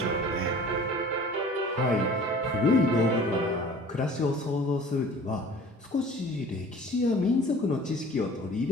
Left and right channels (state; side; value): normal; both; correlation 0.46